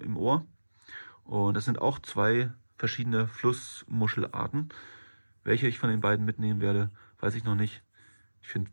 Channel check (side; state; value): both; inverted; correlation -1.00